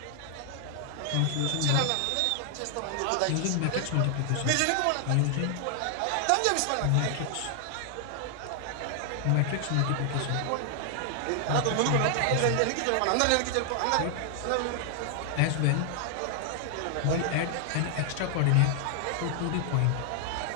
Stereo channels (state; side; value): different; both; correlation 0.00